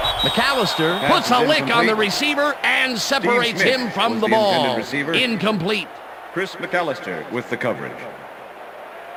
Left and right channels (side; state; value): both; identical; correlation 1.00